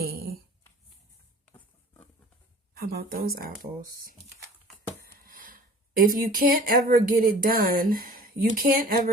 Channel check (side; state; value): both; normal; correlation 0.46